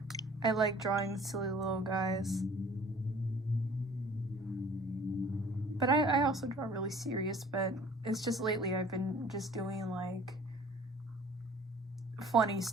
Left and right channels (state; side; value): normal; both; correlation 0.50